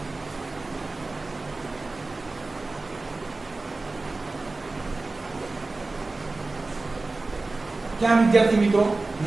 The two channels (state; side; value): quieter; left; 3.3 dB